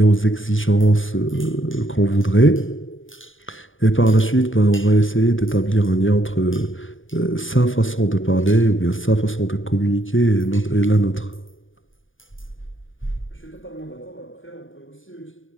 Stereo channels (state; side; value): late; right; 0.57 ms